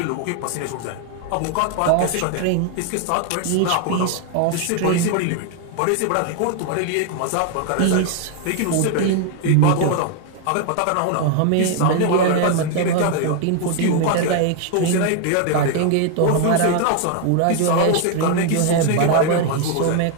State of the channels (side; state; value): both; different; correlation 0.01